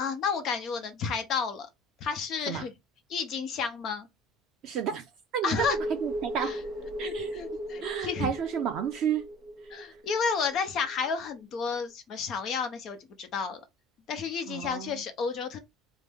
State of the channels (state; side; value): normal; both; correlation 0.44